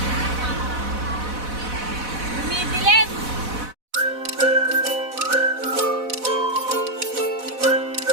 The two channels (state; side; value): late; left; 4.0 ms